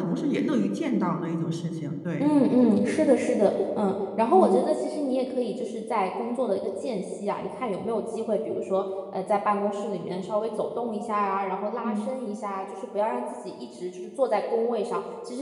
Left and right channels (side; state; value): both; identical; correlation 1.00